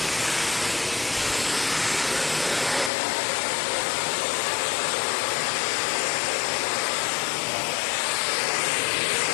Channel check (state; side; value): drops out; right; at 2.9 s